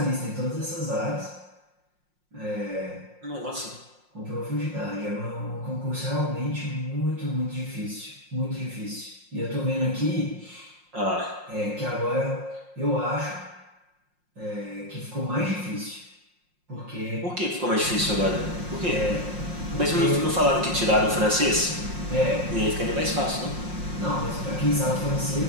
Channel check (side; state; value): left; late; 5.6 ms